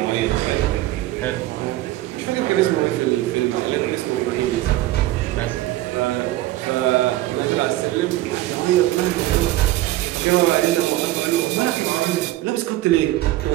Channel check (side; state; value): left; quieter; 16.0 dB